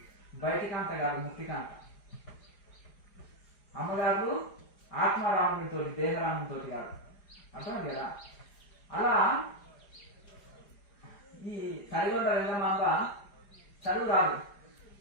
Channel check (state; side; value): late; right; 4.9 ms